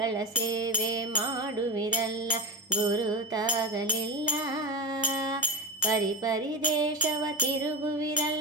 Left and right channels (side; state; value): both; normal; correlation 0.19